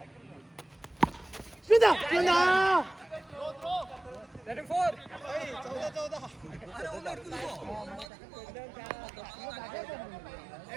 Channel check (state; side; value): drops out; left; at 8.1 s